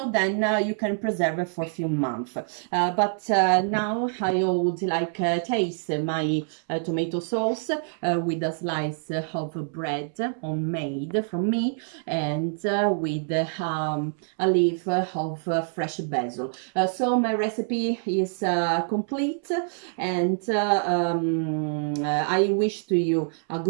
then you can preserve it for a few months. But now I would like taste my tomato sauce with a slice of bread homemade from me, and with a leaf of fresh basil. So my recipe is complete, and I wish to you a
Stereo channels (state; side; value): silent; left; 61 dB below the other